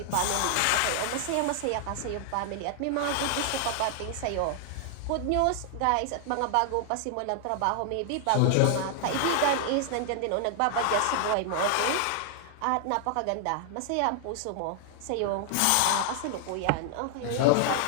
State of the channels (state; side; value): different; both; correlation 0.00